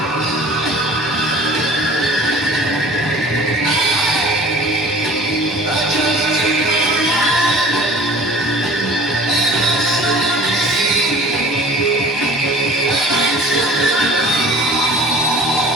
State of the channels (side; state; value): both; normal; correlation 0.46